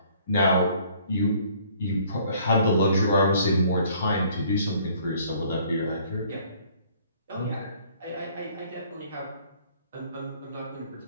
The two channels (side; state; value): both; inverted; correlation -0.59